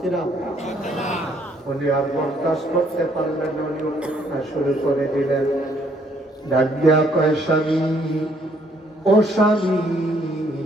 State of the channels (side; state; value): both; normal; correlation 0.66